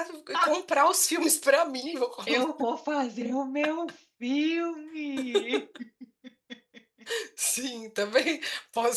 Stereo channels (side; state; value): both; identical; correlation 1.00